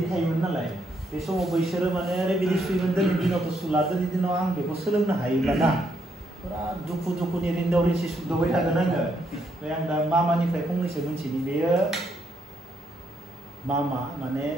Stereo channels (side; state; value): both; normal; correlation 0.75